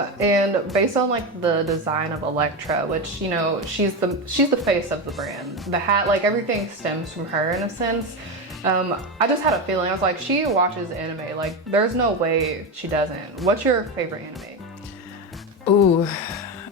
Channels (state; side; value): normal; both; correlation 0.15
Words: based on like the design of Electra, which, you know, she's the face of the brand. The hat, like everything stems from her in a sense. I just had a feeling. I was like, she watches anime. Like, there's no way she doesn't. What's your favorite anime? Ooh.